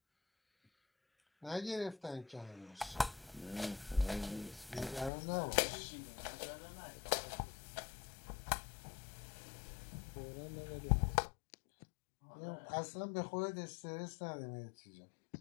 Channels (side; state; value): right; drops out; at 5.1 s